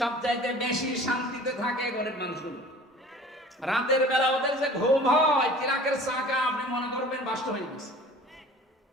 বেশি শান্তিতে থাকে গরিব মানুষগুলো। রাতের বেলা ওদের যে ঘুম হয়, চিরাকের চাকা আপনি মনে করবেন বাস্ত হয়ে গেছে।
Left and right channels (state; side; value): normal; both; correlation 0.45